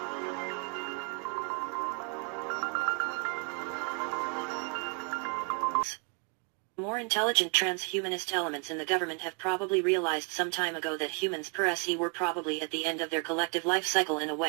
More intelligent transhumanist elements in the government have probably realized some time ago that humans per se were probably at the end of their collective life cycle in a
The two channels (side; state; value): left; quieter; 34.9 dB